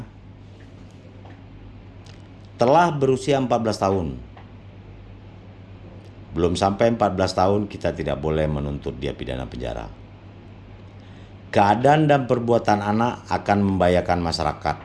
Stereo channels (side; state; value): both; identical; correlation 1.00